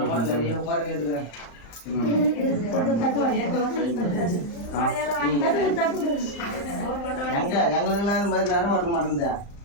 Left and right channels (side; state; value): right; late; 35 ms